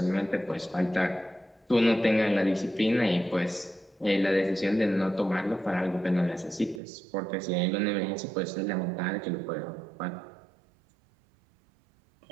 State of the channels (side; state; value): left; drops out; at 6.8 s